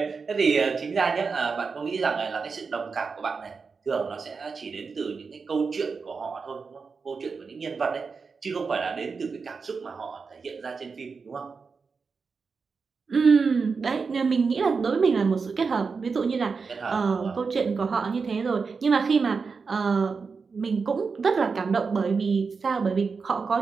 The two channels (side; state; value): left; quieter; 5.0 dB